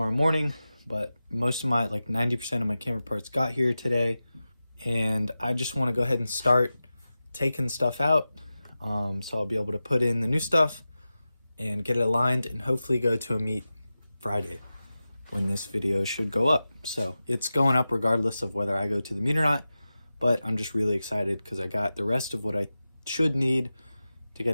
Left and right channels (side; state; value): both; inverted; correlation -0.94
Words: morning, but most of my, 90% of my camera parts got here today, and I just want to go ahead and start taking stuff out, so I'll be able to put in the new stuff and get it aligned and hopefully go to a meet Friday when this video should go up. So it's going up regardless of whether I go to the meet or not. But I'm just really excited because I got the rest of what I should need to